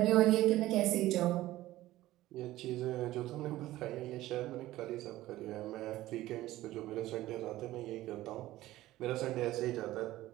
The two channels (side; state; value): left; quieter; 16.0 dB